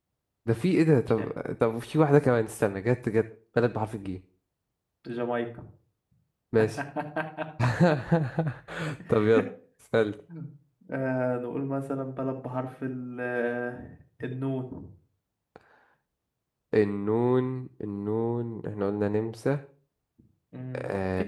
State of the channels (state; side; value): identical; both; correlation 1.00